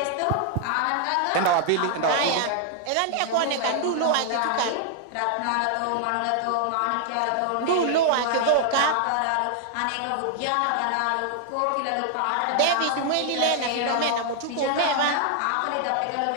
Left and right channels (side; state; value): both; different; correlation 0.00